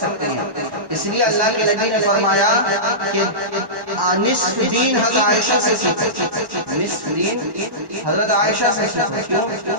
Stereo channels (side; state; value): left; late; 1.1 ms